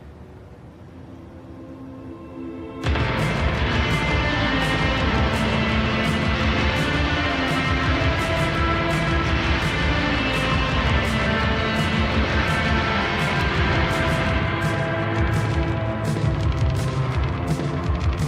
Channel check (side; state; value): both; identical; correlation 1.00